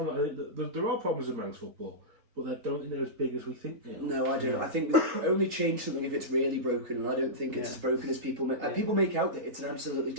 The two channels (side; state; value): left; late; 3.8 ms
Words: I think that there are problems in Manx football, but I don't think they're as big as we think they are. No, I don't. I think we only change something if it's really broken, and I don't think it's as broken as people make. People make out that it's an absolutely